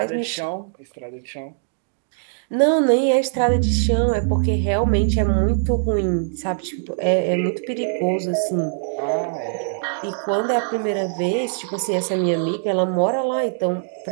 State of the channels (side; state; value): left; silent; digital silence